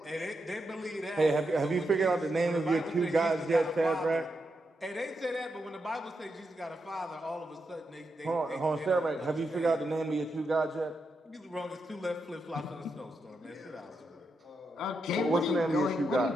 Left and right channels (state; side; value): normal; both; correlation 0.85